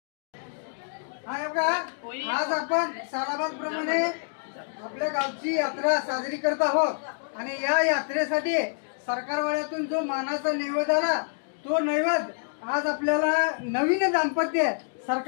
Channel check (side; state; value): right; silent; digital silence